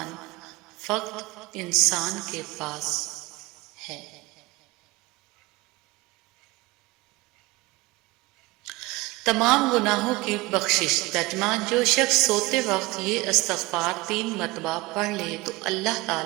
فقط انسان کے پاس ہے۔ تمام گناہوں کی بخشش۔ ترجمہ: جو شخص سوتے وقت یہ استغفار 3 مرتبہ پڑھ لے تو اللہ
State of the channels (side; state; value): left; quieter; 21.9 dB